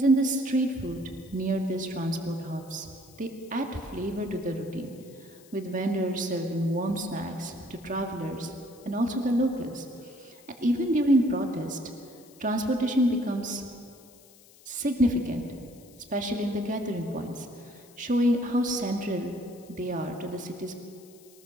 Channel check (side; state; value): left; noise; hiss, 25 dB below the sound